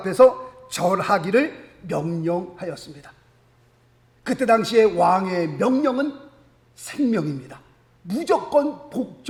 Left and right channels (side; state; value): both; identical; correlation 1.00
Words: 절하기를 명령하였습니다. 그때 당시에 왕의 명령은 생명입니다. 무조건